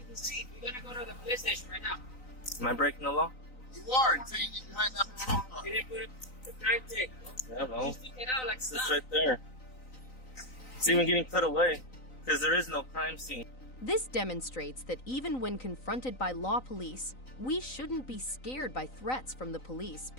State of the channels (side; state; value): right; late; 3.9 ms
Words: the seat. We're gonna go to the police station right now. Am I breaking the law? You are until you get behind that patrol car. You didn't put the crime tape. Yeah, Mo. Just stick it out like It's stuff. right there. It's even getting put away because there is no crime scene. This demonstrates that even when confronted by law police, we shouldn't be scared by threats from the police